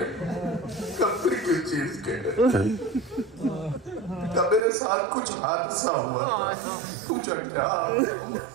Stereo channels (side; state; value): left; drops out; at 4.6 s